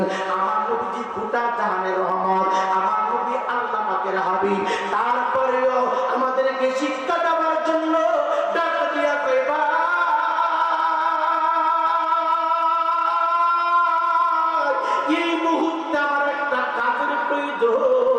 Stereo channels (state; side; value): identical; both; correlation 1.00